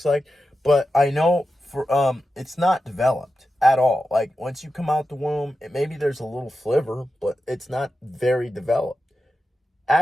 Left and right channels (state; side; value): normal; both; correlation 0.91